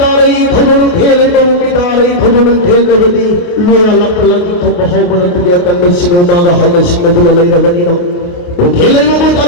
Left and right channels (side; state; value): right; late; 28 ms